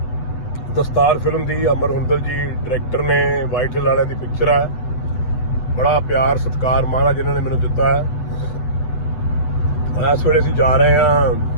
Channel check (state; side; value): late; right; 8.0 ms